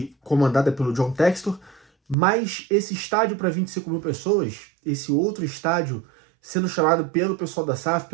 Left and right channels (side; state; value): left; drops out; at 2.1 s